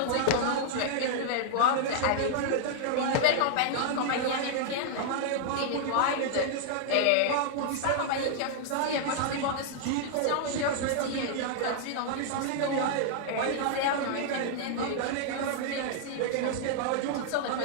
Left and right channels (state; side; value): different; both; correlation -0.01